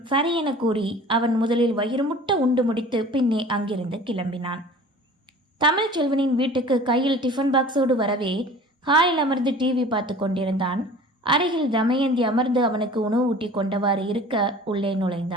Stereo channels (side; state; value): both; normal; correlation 0.44